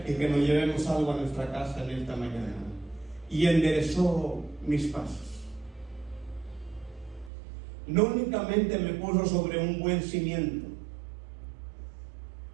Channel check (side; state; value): left; drops out; at 7.3 s